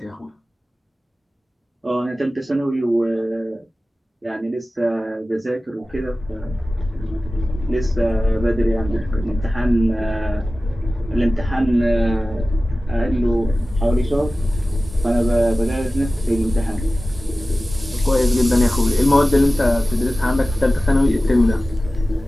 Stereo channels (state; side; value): normal; both; correlation 0.96